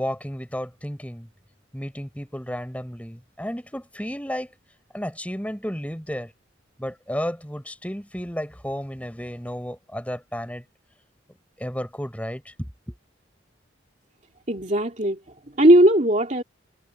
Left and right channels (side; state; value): both; normal; correlation 0.63